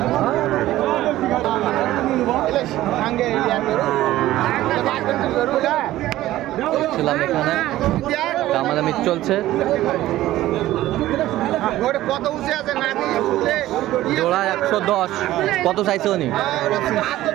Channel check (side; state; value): left; quieter; 15.2 dB